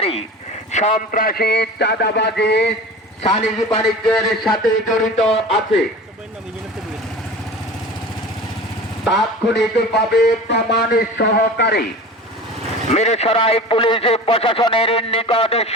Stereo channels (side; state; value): both; normal; correlation 0.36